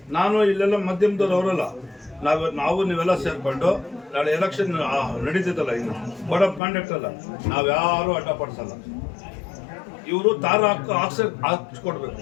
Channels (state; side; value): drops out; right; at 6.6 s